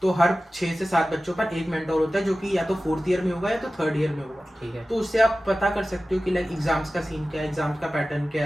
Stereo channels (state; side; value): normal; both; correlation 0.96